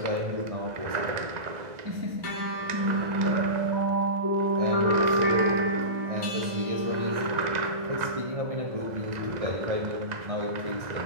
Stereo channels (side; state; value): left; late; 1.6 ms